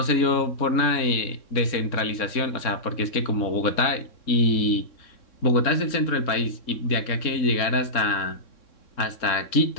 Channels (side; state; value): right; late; 3.6 ms